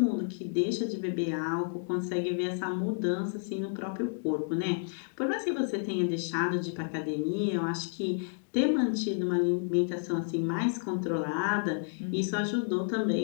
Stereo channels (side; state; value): right; silent; digital silence